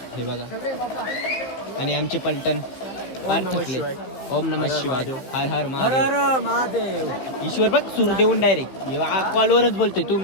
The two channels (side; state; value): right; late; 16 ms